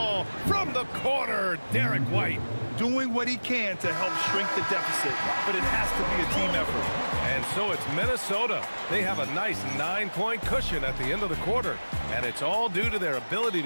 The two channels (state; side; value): inverted; both; correlation -1.00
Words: from the corner. Derek White. Doing what he can to help shrink the deficit, but it has to be a team effort. And so it's Minnesota. They have a nice 9-point cushion at the end of the quarter. And it's all due to their ability